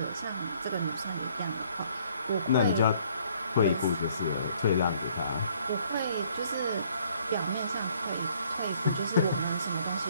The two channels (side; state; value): both; inverted; correlation -0.63